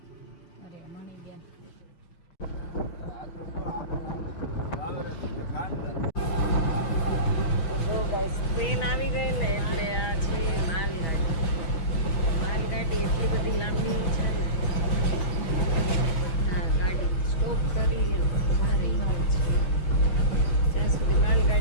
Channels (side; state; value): right; late; 6.3 ms